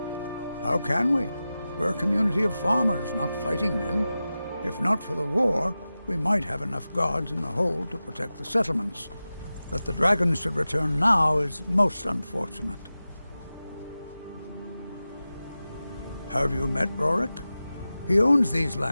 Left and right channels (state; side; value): inverted; both; correlation -0.94